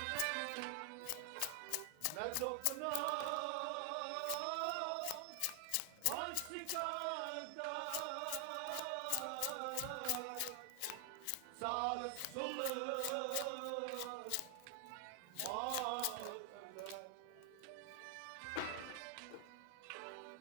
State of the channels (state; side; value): different; both; correlation 0.00